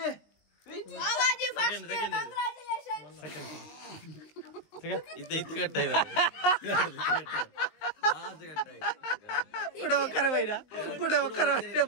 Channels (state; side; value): late; right; 20 ms